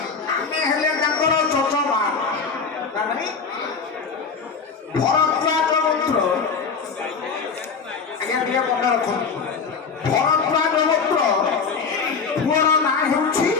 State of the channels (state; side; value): quieter; right; 5.3 dB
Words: ହେଲେ ତାଙ୍କର ଚଚମା ଭରଦ୍ୱାଜ ଗୋତ୍ର। ଆଜ୍ଞା ଟିକେ ମନେ ରଖନ୍ତୁ, ଭରଦ୍ୱାଜ ଗୋତ୍ର ପୁଅର ନାଁ ହେଉଛି